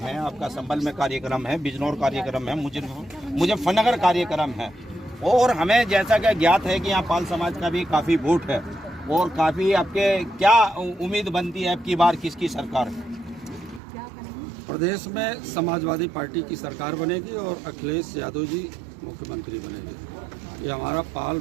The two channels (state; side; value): drops out; left; at 13.8 s